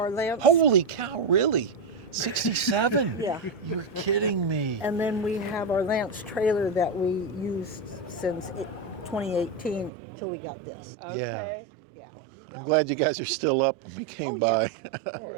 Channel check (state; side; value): drops out; left; at 9.9 s